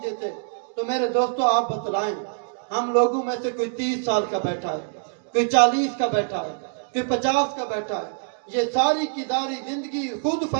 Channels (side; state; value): left; silent; digital silence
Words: دیتے. تو میرے دوستو آپ بتلائیں، ہم لوگوں میں سے کوئی 30 سال کا بیٹھا ہے، کوئی 40 کا بیٹھا ہے، کوئی 50 کا بیٹھا ہے. یہ ساری کی ساری زندگی خود